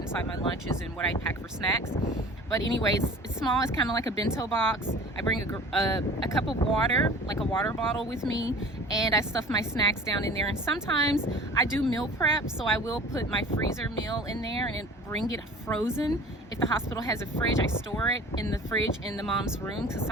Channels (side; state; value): both; normal; correlation 0.43